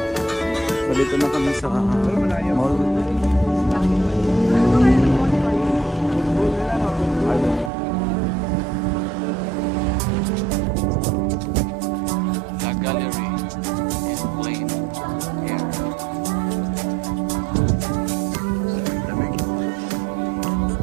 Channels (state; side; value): drops out; left; at 7.7 s